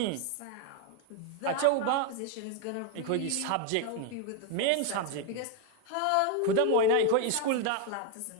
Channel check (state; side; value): different; both; correlation 0.01